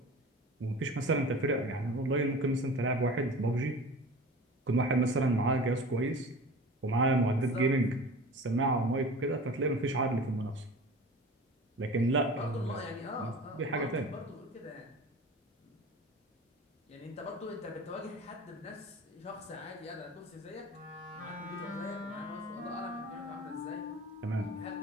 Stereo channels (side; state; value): both; normal; correlation 0.38